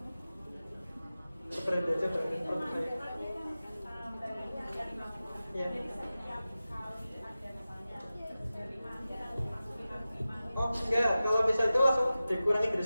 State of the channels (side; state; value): both; inverted; correlation -0.95